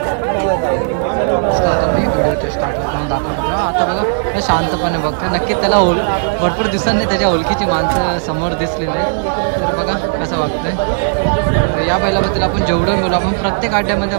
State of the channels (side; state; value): left; silent; digital silence